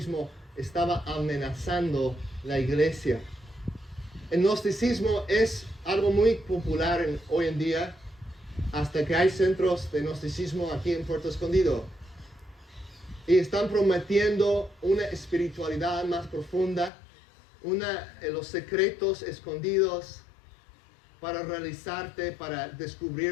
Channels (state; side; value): drops out; right; at 16.9 s